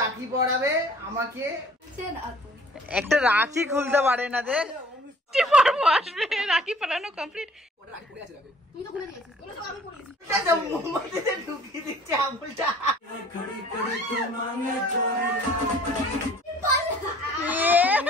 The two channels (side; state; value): both; normal; correlation 0.53